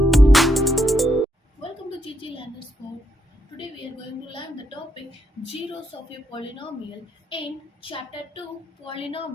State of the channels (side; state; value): both; normal; correlation 0.78